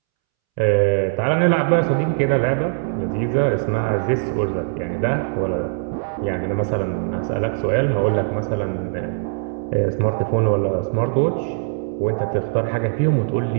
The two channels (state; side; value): silent; left; 65 dB below the other